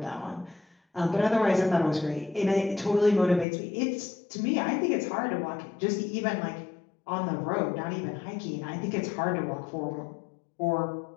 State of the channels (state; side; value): drops out; right; at 3.5 s